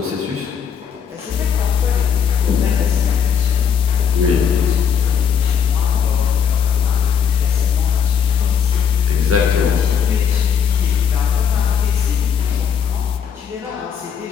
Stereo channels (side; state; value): right; quieter; 7.7 dB